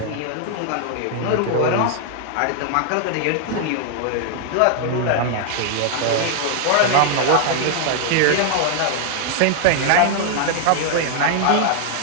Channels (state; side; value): different; both; correlation 0.00